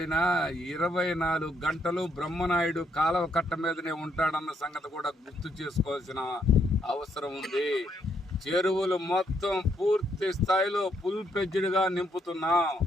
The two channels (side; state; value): both; normal; correlation 0.73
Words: 24 గంటలు బ్రహ్మనాయుడు కాలవ కట్ట మీదనే ఉంటాడన్న సంగతి కూడా గుర్తు చేసుకోవాల్సిన అవసరం ఉంది. చెరువులు మొత్తం పూర్తి స్థాయిలో ఫుల్ ఫ్లెడ్జ్డ్గా నింపుతున్నాం.